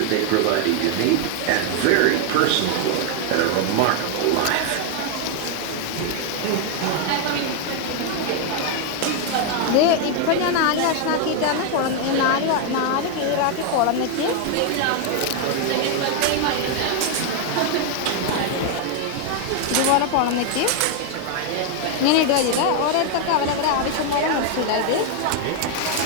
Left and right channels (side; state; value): both; different; correlation 0.00